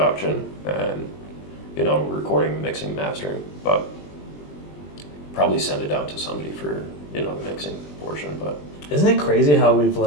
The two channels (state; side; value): late; right; 20 ms